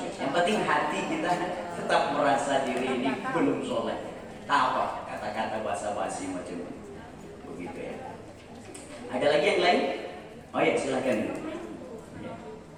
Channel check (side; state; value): both; identical; correlation 1.00